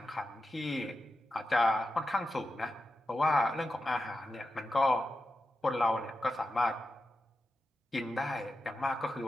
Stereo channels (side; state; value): both; normal; correlation 0.90